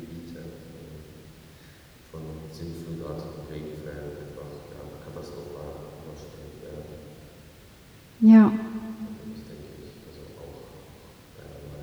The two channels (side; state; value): both; identical; correlation 1.00